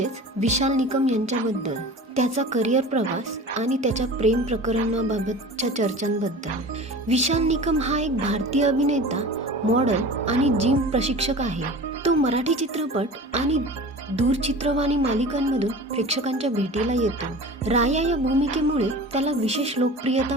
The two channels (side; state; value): both; normal; correlation 0.37